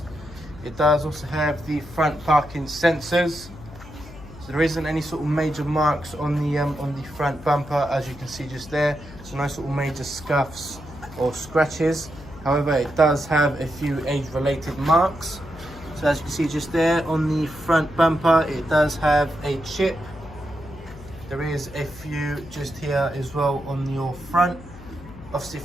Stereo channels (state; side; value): noise; left; hum, 17 dB below the sound